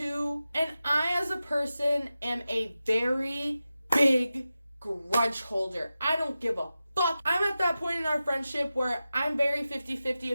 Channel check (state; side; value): inverted; both; correlation -0.93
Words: And I, as a person, am a very big grudge holder. I don't give a fuck. I'm at that point in our friendship where I'm very 50-50